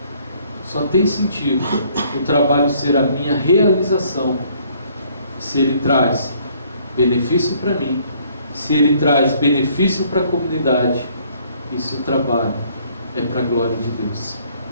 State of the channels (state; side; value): inverted; both; correlation -0.62